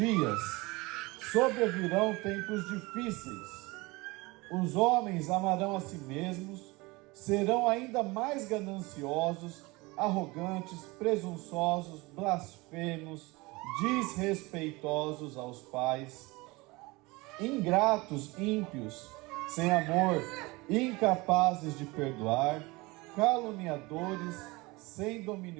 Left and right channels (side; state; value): left; quieter; 23.5 dB